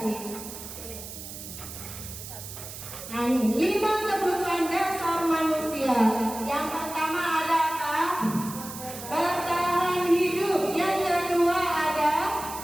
Nah ini 5 kebutuhan dasar manusia. Yang pertama adalah bertahan hidup. Yang kedua ada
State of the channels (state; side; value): noise; right; hiss, 11 dB below the sound